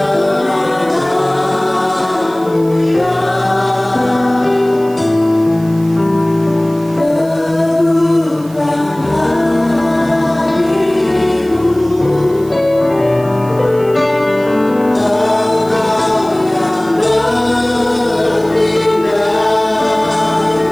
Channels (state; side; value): noise; right; hiss, 23 dB below the sound